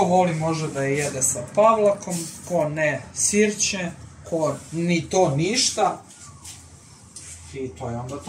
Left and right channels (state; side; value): identical; both; correlation 1.00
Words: može da je jede sa pavlakom, ko ne sirće, ko ni to ništa i to je onda